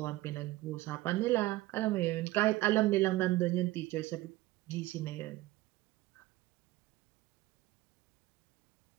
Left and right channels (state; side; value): quieter; left; 17.9 dB